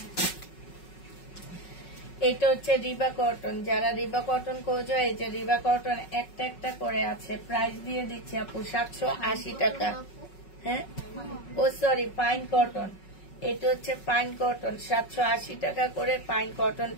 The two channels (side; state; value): right; late; 5.4 ms